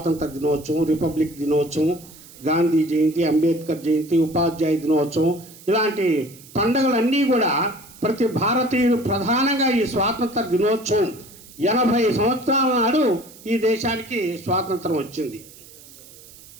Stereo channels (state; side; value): noise; right; hiss, 21 dB below the sound